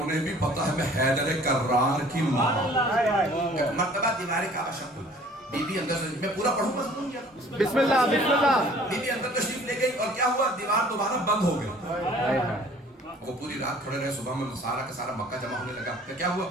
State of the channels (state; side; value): normal; both; correlation 0.52